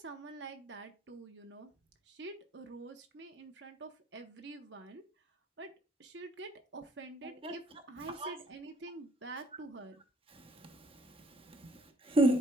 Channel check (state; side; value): normal; both; correlation 0.62